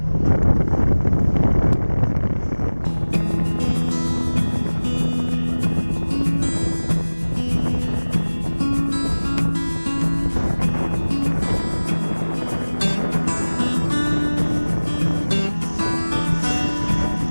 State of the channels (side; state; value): both; inverted; correlation -1.00